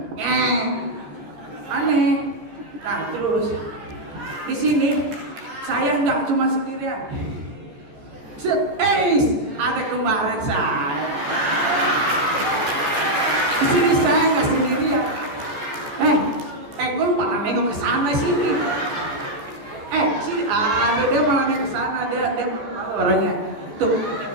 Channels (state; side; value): late; left; 14 ms